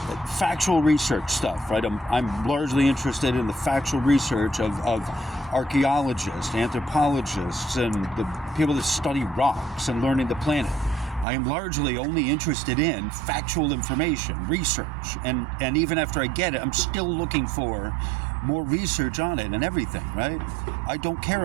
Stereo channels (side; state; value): left; drops out; at 11.2 s